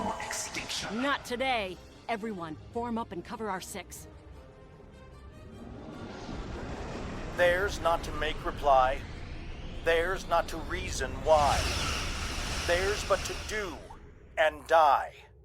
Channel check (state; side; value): identical; both; correlation 1.00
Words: extinction. Not today. Everyone, form up and cover our six. Theirs not to make reply. Theirs not to reason why. Theirs but to do and die.